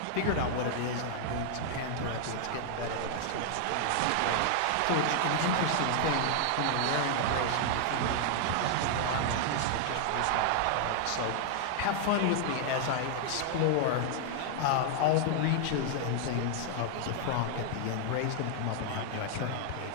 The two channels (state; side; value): different; both; correlation 0.00